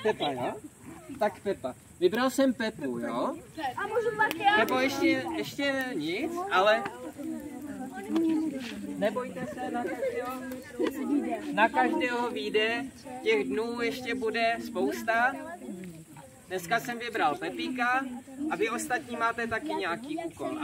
Pepa, jo? Tak Pepa. Vybral jsem Pepu, jo? A můžu pak já? Pepo, ještě nic, ale nebojte se, na každého vyjde, těch dnů ještě bude spousta. Dneska jsem vybral Pepíka a vy ostatní máte taky nějaký úkol,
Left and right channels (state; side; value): identical; both; correlation 1.00